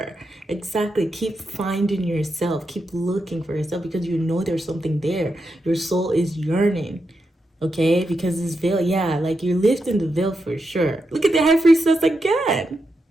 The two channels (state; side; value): normal; both; correlation 0.86